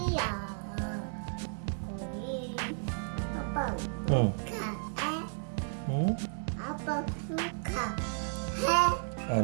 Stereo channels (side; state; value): left; silent; digital silence